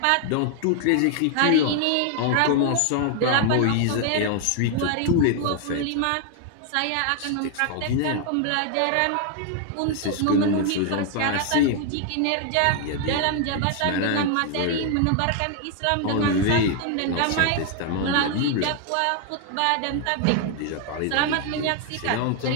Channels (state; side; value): different; both; correlation 0.00